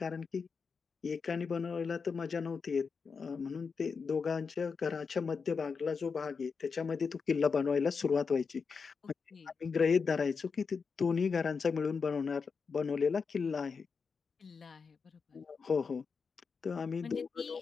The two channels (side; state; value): right; quieter; 5.3 dB